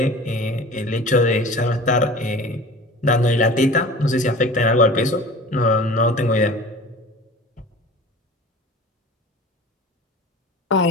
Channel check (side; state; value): both; normal; correlation 0.40